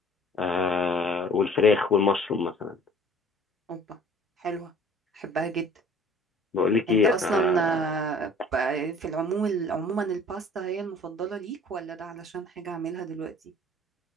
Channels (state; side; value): normal; both; correlation 0.50